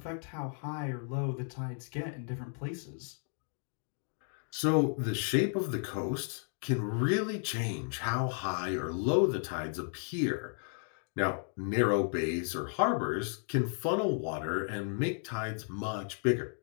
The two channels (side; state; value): right; silent; 55 dB below the other